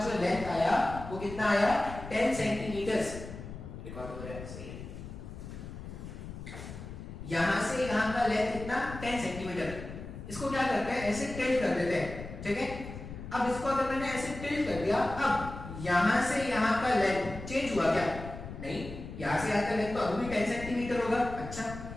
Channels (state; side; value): noise; left; rumble, 11 dB below the sound